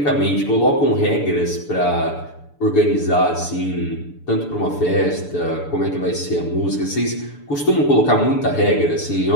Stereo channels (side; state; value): right; late; 6.9 ms